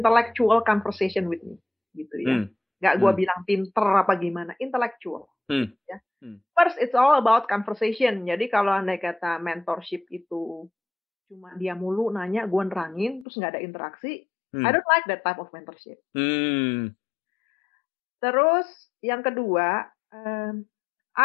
conversation with me, gitu ya. Nggak gue bilang pinter apa gimana, intellectual. Ya. First, it's all about conversation. Jadi kalau andai kata mentorship itu cuma dia mulu nanya, gue nerangin, terus nggak ada interaksi, I don't like that type of mentorship. Terus yang kedua,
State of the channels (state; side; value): drops out; right; at 13.2 s